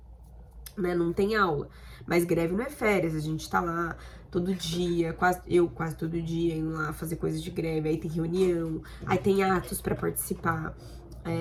né? Não tem aula. Mas greve não é férias, a gente tá lá todo dia, quase todo dia, indo lá fazer coisas de greve, aí tem reunião, aí tem atos pra participar,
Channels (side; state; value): both; identical; correlation 1.00